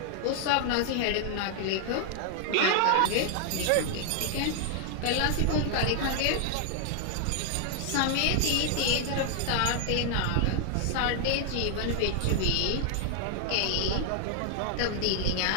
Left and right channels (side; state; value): both; different; correlation 0.00